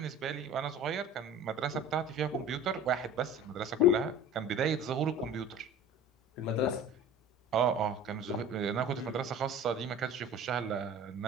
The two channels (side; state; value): both; normal; correlation 0.41